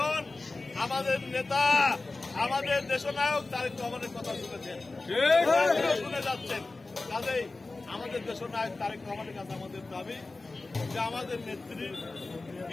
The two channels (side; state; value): right; quieter; 3.4 dB